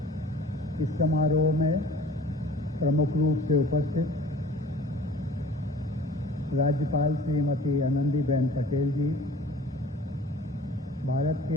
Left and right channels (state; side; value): normal; both; correlation 0.47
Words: इस समारोह में प्रमुख रूप से उपस्थित राज्यपाल श्रीमती आनंदीबेन पटेल जी, भारत